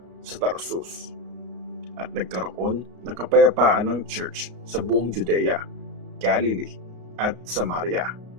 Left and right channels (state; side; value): late; left; 33 ms